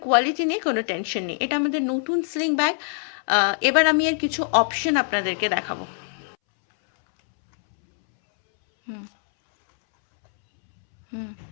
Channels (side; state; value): right; silent; 63 dB below the other